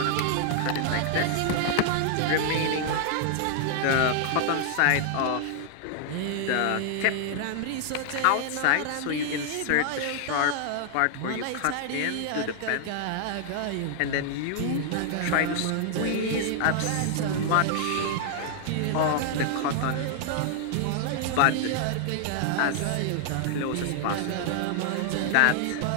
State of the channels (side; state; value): both; different; correlation 0.00